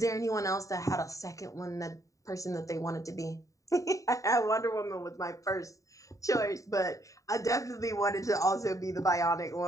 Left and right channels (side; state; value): right; late; 0.16 ms